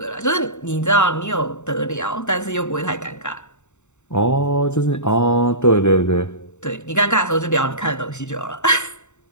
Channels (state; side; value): late; right; 0.83 ms